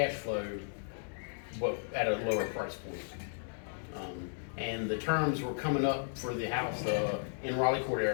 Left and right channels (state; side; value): silent; right; 55 dB below the other